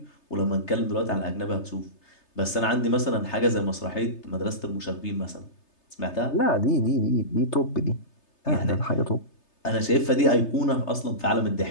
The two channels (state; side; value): late; right; 3.3 ms